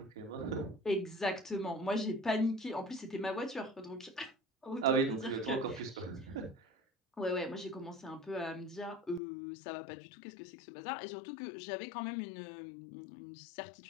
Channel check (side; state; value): right; drops out; at 9.2 s